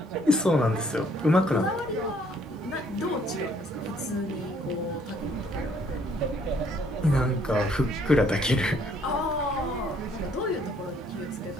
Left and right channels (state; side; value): normal; both; correlation 0.64